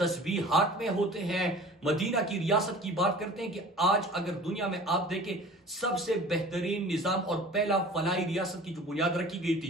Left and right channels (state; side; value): normal; both; correlation 0.44